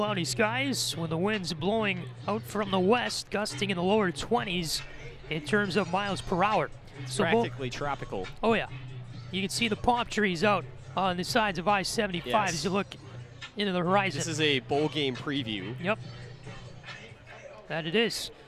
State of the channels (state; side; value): identical; both; correlation 1.00